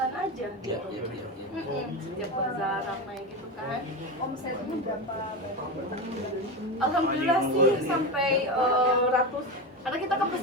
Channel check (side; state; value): both; normal; correlation 0.19